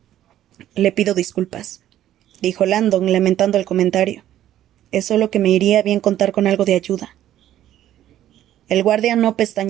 Le pido disculpas, dijo Landon, lamentando el comentario. Es solo que me iría bien contar con algo de ayuda. El guardia no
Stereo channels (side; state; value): left; quieter; 12.2 dB